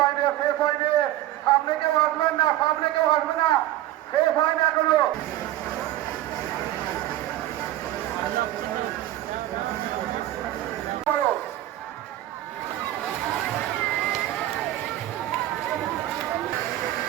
শেষ হয়নি, সামনে কেউ আসবেন না, সামনে কেউ আসবে না, শেষ হয় না এখনো।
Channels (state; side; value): quieter; left; 14.1 dB